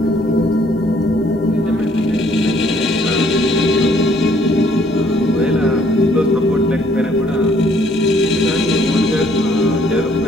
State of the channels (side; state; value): both; normal; correlation 0.64